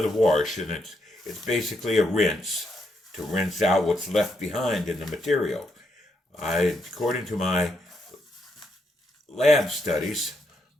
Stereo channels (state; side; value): normal; both; correlation 0.78